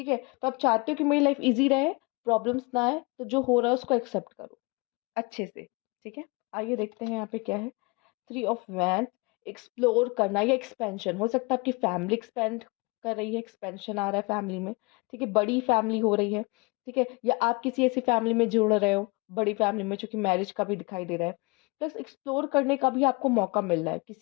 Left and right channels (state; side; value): quieter; right; 27.9 dB